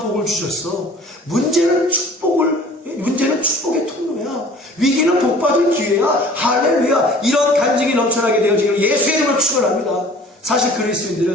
복을 주셨어. 문제는 축복의 통로야. 위기는 복받을 기회야. 할렐루야. 이런 간증이 넘쳐나게 되어지기를 예수의 이름으로 축원합니다. 사실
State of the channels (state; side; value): normal; both; correlation 0.48